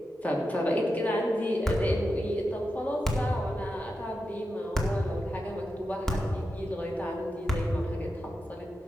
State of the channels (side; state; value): both; normal; correlation 0.89